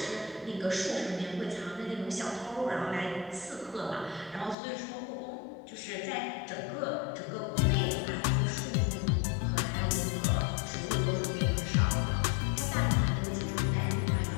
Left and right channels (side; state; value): right; drops out; at 4.5 s